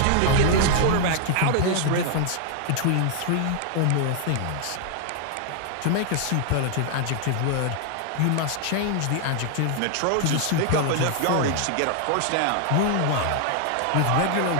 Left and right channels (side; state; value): both; different; correlation 0.00